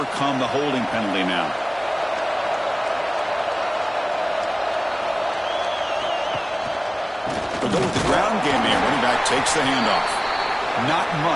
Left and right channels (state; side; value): identical; both; correlation 1.00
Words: the holding penalty now. They'll go with the ground game here. Running back takes the handoff. Not